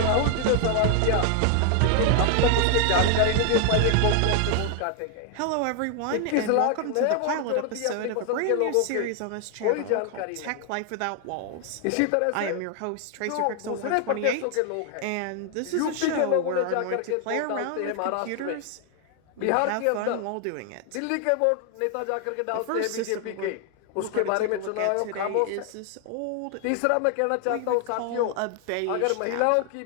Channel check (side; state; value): both; different; correlation 0.00